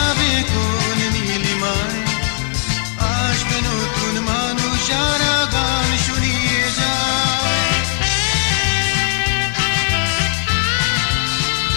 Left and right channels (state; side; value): silent; right; 57 dB below the other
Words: কোন নীলিমায়। আসবে নতুন মানুষ যারা গান শুনিয়ে যায়।